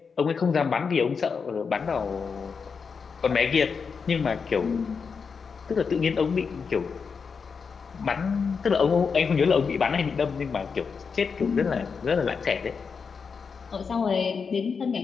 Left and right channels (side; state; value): right; quieter; 5.6 dB